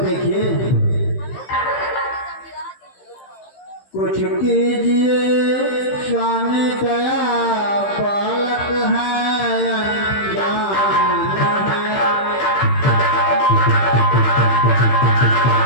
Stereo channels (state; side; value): late; right; 15 ms